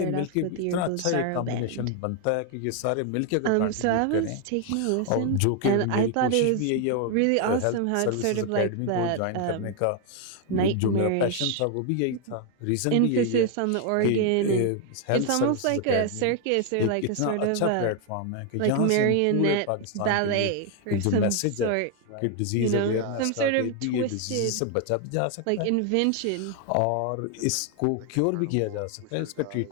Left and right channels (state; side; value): different; both; correlation 0.00